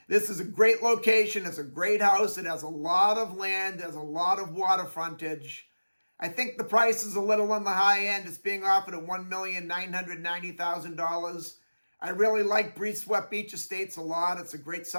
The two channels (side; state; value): both; inverted; correlation -1.00